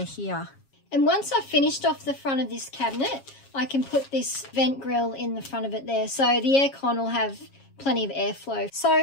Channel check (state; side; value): late; right; 7.3 ms